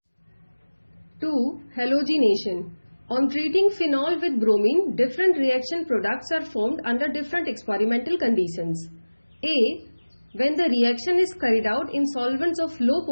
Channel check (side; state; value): both; inverted; correlation -1.00